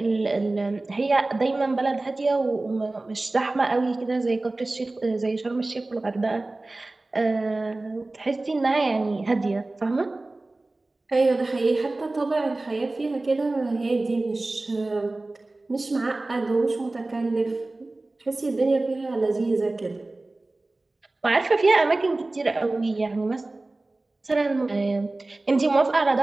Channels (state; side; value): quieter; left; 3.0 dB